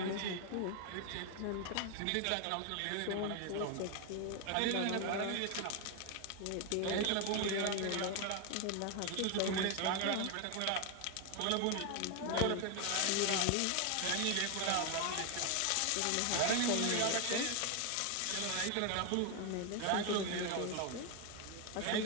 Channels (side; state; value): both; different; correlation 0.01